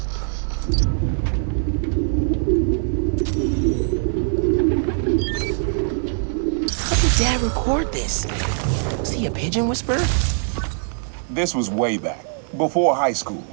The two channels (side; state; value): left; silent; digital silence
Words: How did Dad record this? Was he a pigeon whisperer? This was way back, before high school.